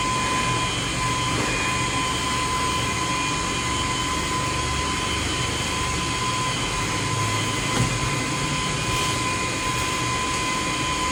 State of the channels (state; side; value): identical; both; correlation 1.00